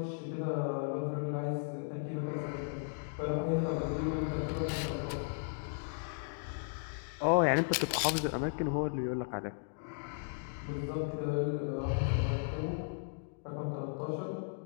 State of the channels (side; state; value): right; silent; digital silence